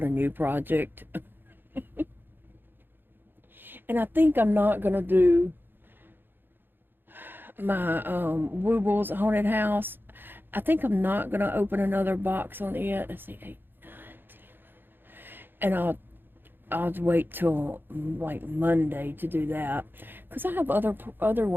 a new project. And I think I'm not going to do my Woobles haunted house. I think I'm not gonna open another box on it. Let's see, 8, 9, 10, and I'll wait till like Monday to do that, because I have other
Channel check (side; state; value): left; late; 0.098 ms